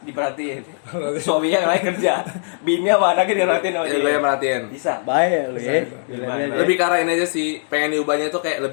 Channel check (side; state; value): right; silent; digital silence